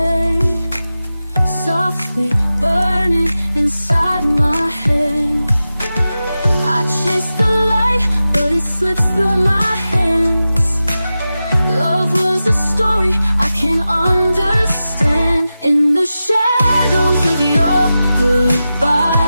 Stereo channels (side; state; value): both; inverted; correlation -0.93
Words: softly burning inside my head. I chase the light, but it slips through my hands. Love was a story I can't understand. In the shadows of your